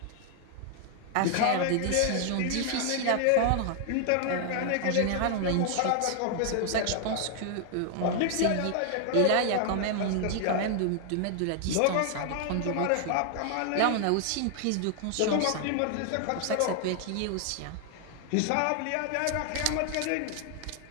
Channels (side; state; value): both; different; correlation 0.00